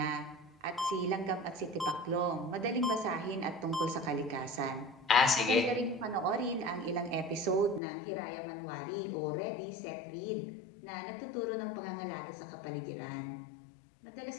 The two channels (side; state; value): right; drops out; at 7.8 s